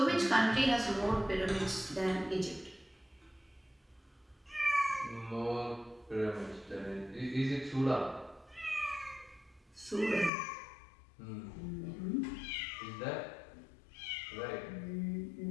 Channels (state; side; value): drops out; right; at 10.3 s